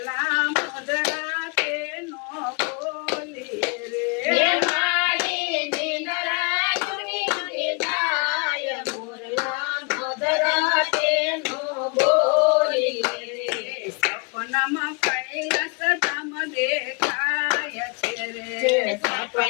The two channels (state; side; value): quieter; right; 33.3 dB